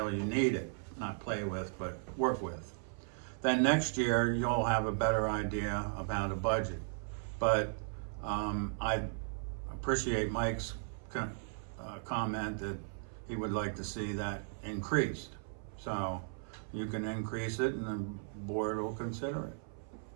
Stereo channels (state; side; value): silent; left; 54 dB below the other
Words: you need it. Not play with, but work with. Then next year, you'll have a better idea about a budget. But I appreciate Mike's comment that he would like to see that increased. So you can increase it and the board will consider it.